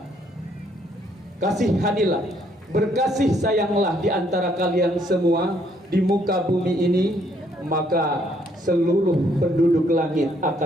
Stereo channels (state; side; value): normal; both; correlation 0.68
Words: Kasihanilah, berkasih sayanglah di antara kalian semua di muka bumi ini, maka seluruh penduduk langit